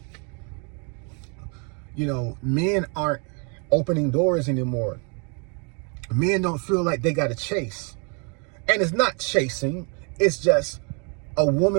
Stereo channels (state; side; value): quieter; left; 36.1 dB